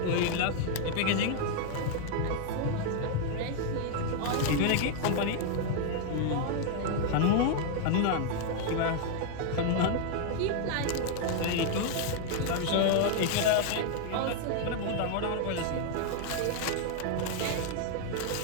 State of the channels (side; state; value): both; different; correlation 0.00